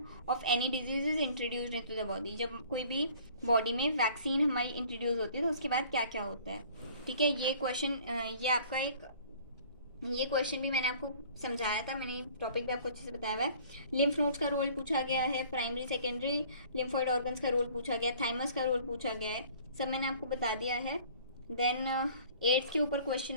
of any disease is introduced into the body। जब कोई भी बॉडी में वैक्सीन हमारी इंट्रोड्यूस होती है तो उसके बाद क्या क्या होता है, ठीक है। ये क्वेश्चन ये आपका ये क्वेश्चन भी मैंने आपको समझाया था, मैंने टॉपिक भी आपको अच्छे से बताया हुआ है। लिम्फ नोड्स का रोल पूछा गया है, प्राइमरी सेकेंडरी लिम्फोइड ऑर्गन्स का रोल पूछा गया है, थाइमस का रोल पूछा गया है, सब मैंने आपको बता दिया है। देन एड्स के ऊपर क्वेश्चन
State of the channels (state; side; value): inverted; both; correlation -0.52